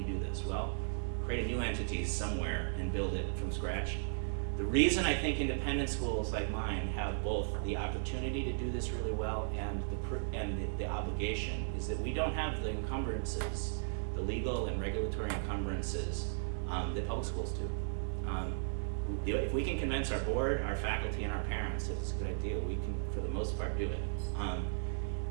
do this? Well, create a new entity somewhere and build it from scratch. The reason I think independent schools like mine have both the opportunity to do this really well and the obligation is that we don't have the encumbrances, the legal and regulatory encumbrances that public schools do. If we can convince our board, our faculty, and our parents that it's a good idea, we can, for the most part, do it.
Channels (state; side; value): silent; left; digital silence